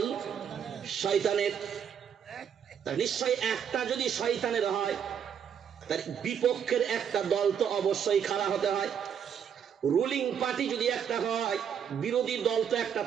শয়তানের। নিশ্চয় একটা যদি শয়তানের হয়, তার বিপক্ষের একটা দল তো অবশ্যই খাড়া হতে হয়। রুলিং পার্টি যদি একটা হয়, বিরোধী দল তো একটা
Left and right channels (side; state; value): left; quieter; 8.1 dB